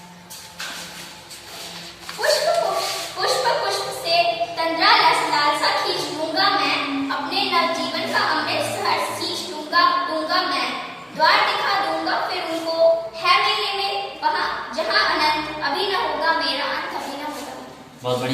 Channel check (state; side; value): identical; both; correlation 1.00